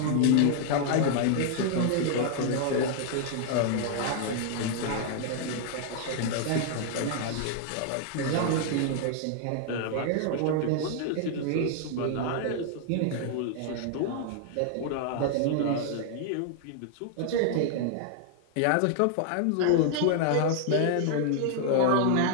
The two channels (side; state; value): both; different; correlation 0.00